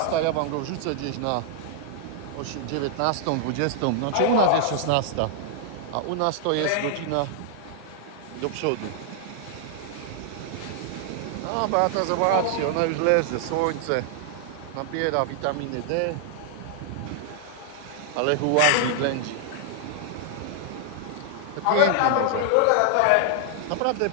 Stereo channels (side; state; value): both; different; correlation 0.00